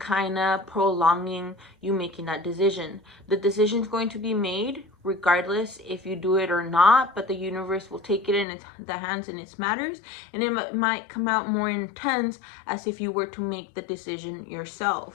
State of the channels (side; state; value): right; drops out; at 8.5 s